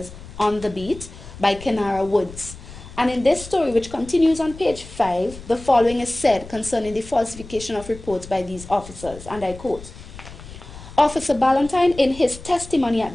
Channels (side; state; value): left; noise; rumble, 16 dB below the sound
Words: on the beat by Kenara Woods. And in this story, which continues on page 5, the following is said concerning the falsification of reports by these officers, and I quote, Officer Ballantyne, in his testimony at